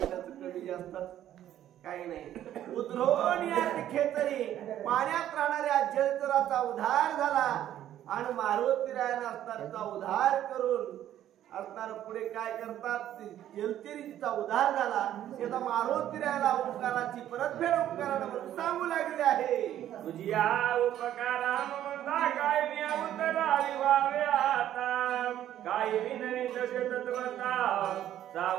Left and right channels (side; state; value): left; quieter; 11.8 dB